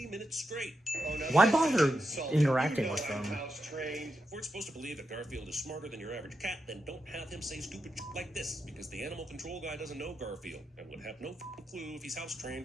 minutes straight. Oh, no, Why that's bother insulting. interacting You know with I'm them? house trained. If we're supposed to believe that Garfield is smarter than your average cat, then don't have him say stupid shit like this, because the animal control guy doesn't know Garfield, and would have no f***ing clue if he's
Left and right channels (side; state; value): both; normal; correlation 0.86